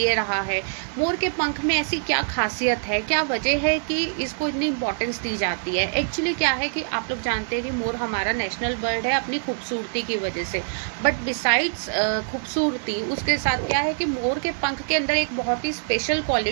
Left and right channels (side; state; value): left; silent; digital silence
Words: रहा है। मोर के पंख में ऐसी क्या खासियत है, क्या वजह है कि इसको इतनी इंपॉर्टेंस दी जाती है? एक्चुअली क्या है कि आप लोग जानते हैं कि मोर हमारा नेशनल बर्ड है अपनी खूबसूरती की वजह से। बट बिसाइड्स खूबसूरती, उसके साथ क्या है कि मोर के पंख के अंदर एक बहुत ही स्पेशल